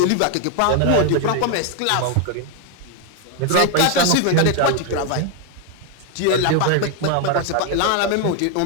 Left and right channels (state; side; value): different; both; correlation 0.01